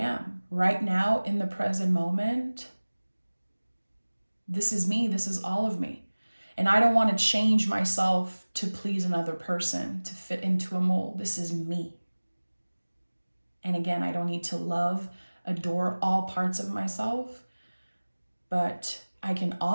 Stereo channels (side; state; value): both; inverted; correlation -1.00